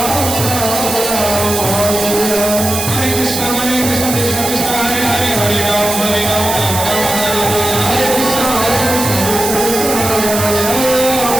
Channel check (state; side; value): noise; right; hiss, 4 dB below the sound